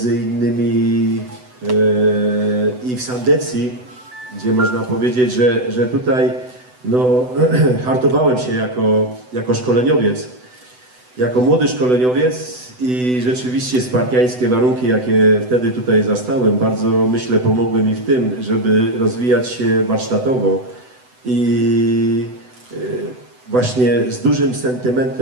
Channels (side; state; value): left; late; 8.0 ms